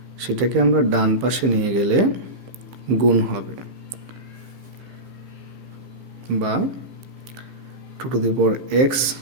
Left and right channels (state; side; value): late; left; 15 ms